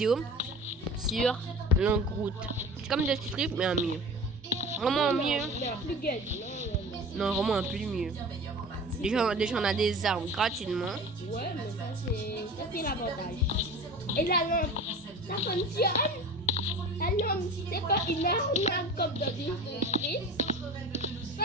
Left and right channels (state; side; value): normal; both; correlation 0.36